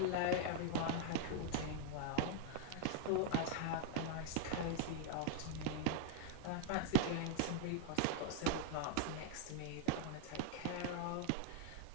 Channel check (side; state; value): both; different; correlation 0.00